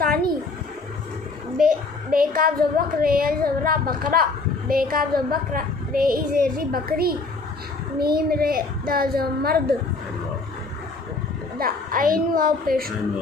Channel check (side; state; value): right; quieter; 3.8 dB